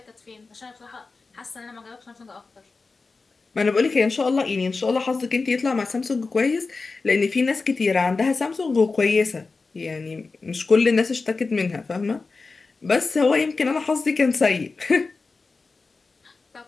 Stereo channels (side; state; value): right; quieter; 4.1 dB